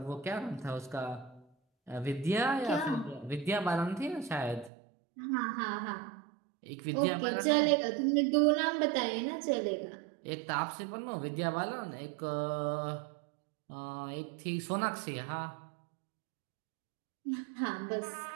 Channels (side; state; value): left; drops out; at 4.7 s